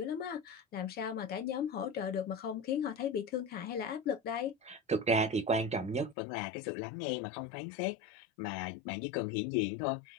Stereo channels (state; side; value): drops out; right; at 6.2 s